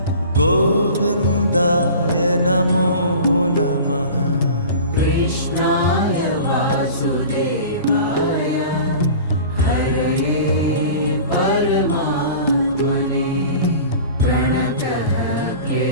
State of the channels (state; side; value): inverted; both; correlation -0.39